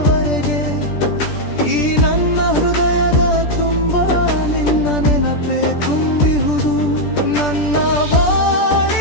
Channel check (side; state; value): right; late; 14 ms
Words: ಈ ನನ್ನ ಹೃದಯದ ತುಂಬ ನಿನ್ನ ನೆನಪೇ ತುಂಬಿಹುದು ನನ್ನ